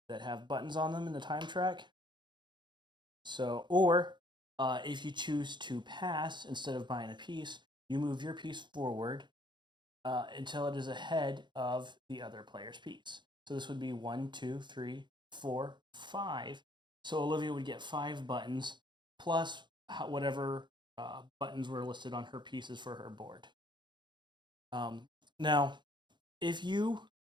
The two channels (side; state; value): left; late; 0.22 ms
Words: that have buttons on them in the time track. So, or if you choose to pass instead of buying a piece, you move your piece forward until it is ahead of the other player's piece. So this would be 1, 2, 3, 4, 5. So Olivia would get 5 buttons plus whatever buttons were listed on her pieces for her board. Now, if you